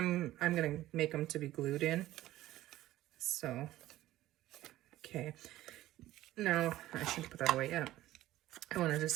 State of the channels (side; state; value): left; quieter; 15.2 dB